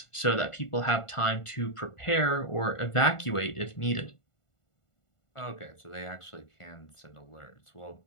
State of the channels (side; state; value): right; late; 1.4 ms